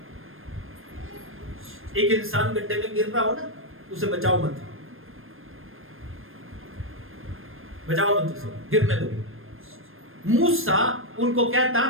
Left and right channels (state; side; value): late; left; 0.60 ms